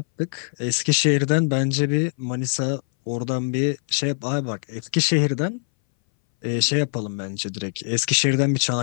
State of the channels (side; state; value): right; silent; 61 dB below the other